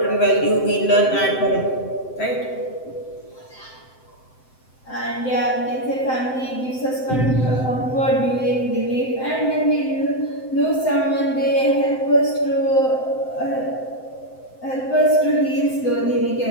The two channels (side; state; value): right; late; 7.8 ms